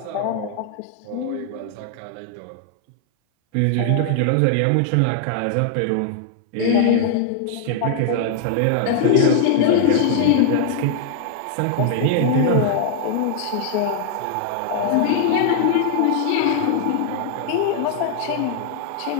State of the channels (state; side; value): different; both; correlation 0.00